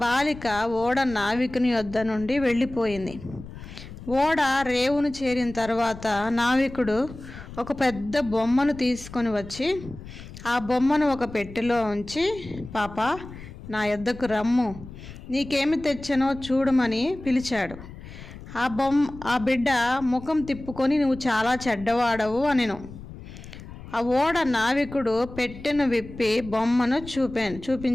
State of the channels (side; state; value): left; noise; rumble, 15 dB below the sound